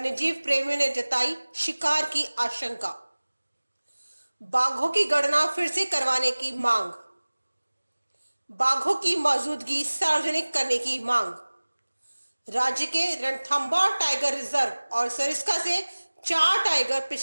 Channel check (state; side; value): inverted; both; correlation -1.00